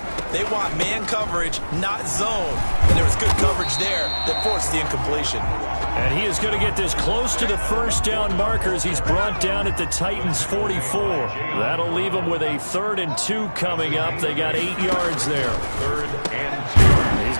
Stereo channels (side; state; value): both; inverted; correlation -1.00